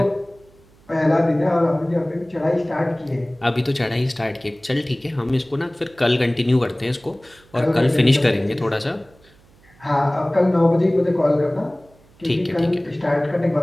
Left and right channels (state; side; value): noise; right; hum, 29 dB below the sound